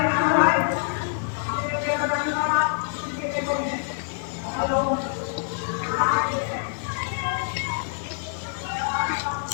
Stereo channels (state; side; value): silent; right; digital silence